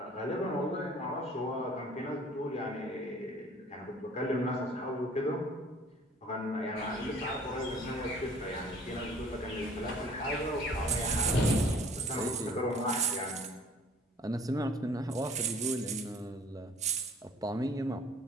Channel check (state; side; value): normal; both; correlation 0.52